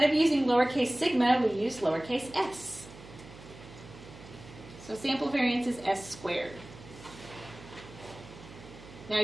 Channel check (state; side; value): noise; right; hum, 17 dB below the sound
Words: of using lowercase sigma, we use lowercase s. So sample variance is s squared. Now,